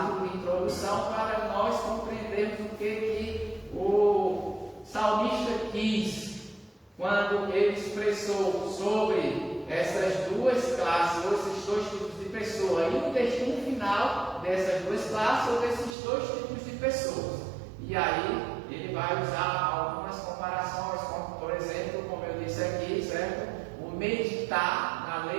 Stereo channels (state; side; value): drops out; left; at 16.0 s